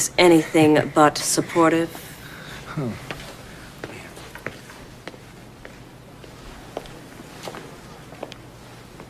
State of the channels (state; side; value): identical; both; correlation 1.00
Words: anything but supportive.